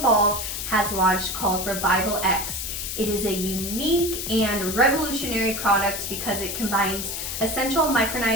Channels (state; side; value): noise; left; hiss, 5 dB below the sound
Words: has launched called Revival X. It is a unique and revolutionary product because it combines essential